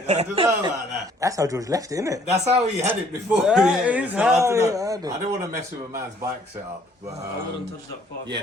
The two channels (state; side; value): normal; both; correlation 0.61